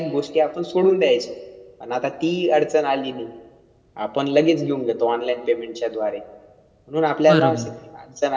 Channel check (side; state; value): both; identical; correlation 1.00